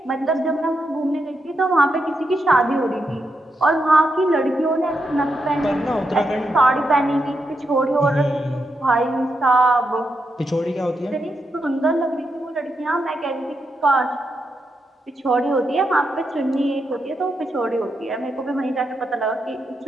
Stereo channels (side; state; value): both; normal; correlation 0.84